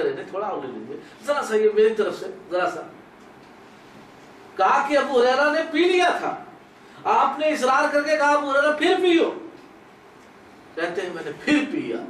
نہیں تھوڑا اور لے لیجیے، ذرا سا یہ میری طرف سے ذرا سا۔ کہا کہ ابو ہریرہ نے پی لیا تھا، آپ نے اصرار کر کے کہا ابو ہریرہ پھر پیو، کہتے ہیں میں نے پھر پیا۔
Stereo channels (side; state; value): both; identical; correlation 1.00